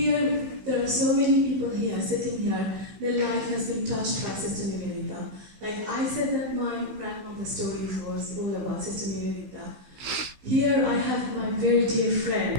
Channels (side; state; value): left; late; 16 ms